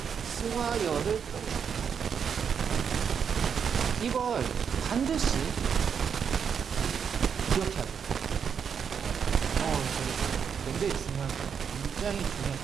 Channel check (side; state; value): left; quieter; 7.1 dB